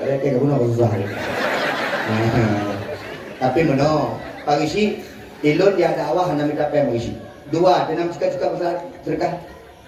kayak kamu nak susah tapi meno pagi si ilon dia dakwah nak minta apa mengisi dua dan suka besar sedekah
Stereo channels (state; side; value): identical; both; correlation 1.00